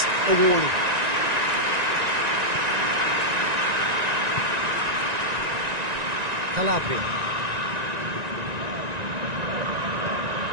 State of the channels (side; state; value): left; late; 1.9 ms